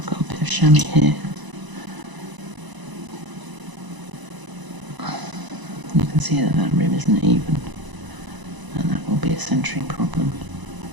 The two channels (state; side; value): late; left; 1.0 ms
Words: got a bit of chamois here. You can see that that rim isn't even, and that will be a centering problem.